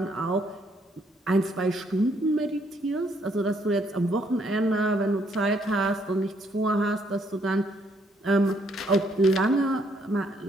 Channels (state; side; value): normal; both; correlation 0.70